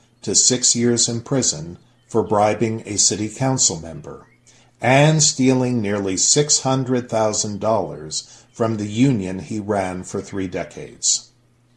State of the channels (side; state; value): both; identical; correlation 1.00